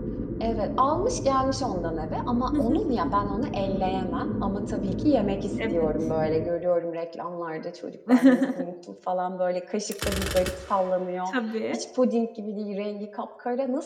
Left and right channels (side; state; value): both; identical; correlation 1.00